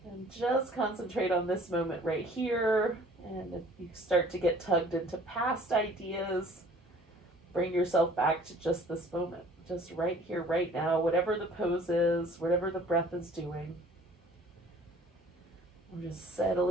just concentrate on this moment right here. And if you start to get tugged into past ideas, bring yourself back to just this moment, just right here, right now, whatever the pose is, whatever the breath is doing. I'm just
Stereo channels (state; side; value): normal; both; correlation 0.52